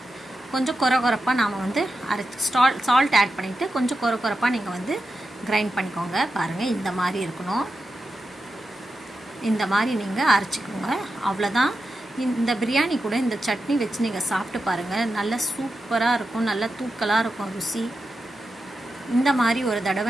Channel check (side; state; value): both; normal; correlation 0.90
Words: கொஞ்சம் கொரப்பாக நாம் வந்து சால்ட் ஆட் பண்ணிவிட்டு கொஞ்சம் கொரப்பாக நீங்கள் வந்து கிரைண்ட் பண்ணிக்கோங்க. பாருங்கள், இந்த மாதிரி இருக்கணும். இந்த மாதிரி நீங்கள் அரைச்சிக்கோங்க. அவ்வளோதான். இந்த பிரியாணி கூட இந்த சட்னி வச்சு நீங்கள் சாப்பிட்டு பாருங்கள். நல்லா சூப்பராக இருக்கும், நல்லா தூக்கலாக இருக்கும் ருசி. இந்த மாதிரி ஒரு